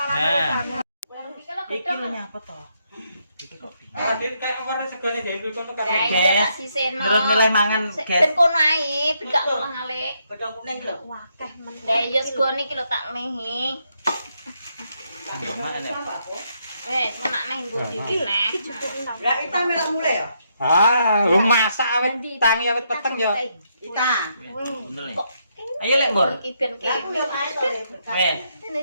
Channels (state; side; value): inverted; both; correlation -0.77